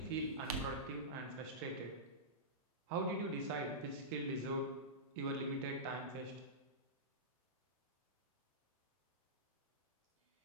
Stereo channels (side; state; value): both; normal; correlation -0.16